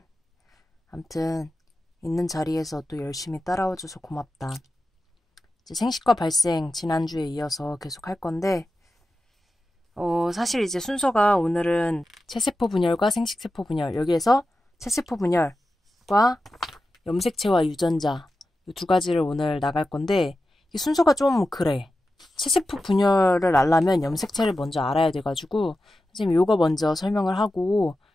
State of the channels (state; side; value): normal; both; correlation 0.92